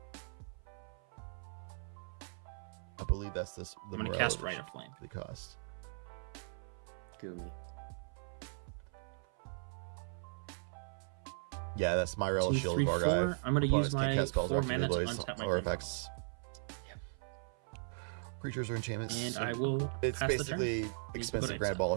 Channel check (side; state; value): left; silent; 52 dB below the other